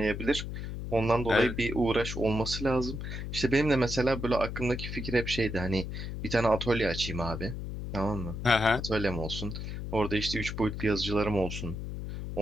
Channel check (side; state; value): left; noise; hum, 6 dB below the sound